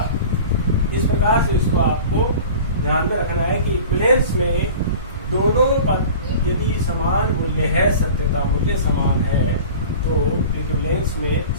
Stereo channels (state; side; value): inverted; both; correlation -0.39